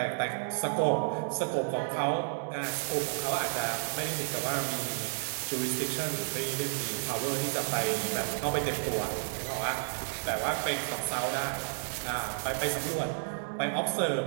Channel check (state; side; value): silent; left; digital silence